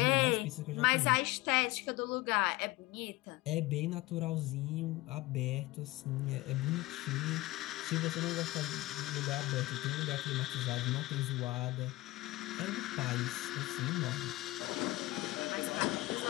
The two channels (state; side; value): quieter; right; 19.4 dB